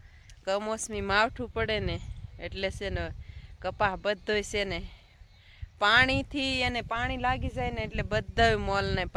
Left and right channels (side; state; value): both; identical; correlation 1.00